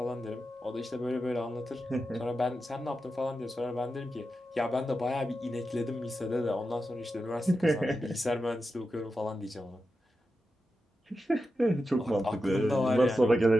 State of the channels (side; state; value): both; normal; correlation 0.90